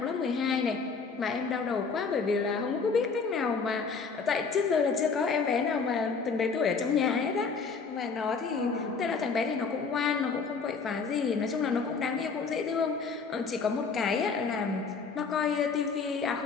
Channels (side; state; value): right; quieter; 5.1 dB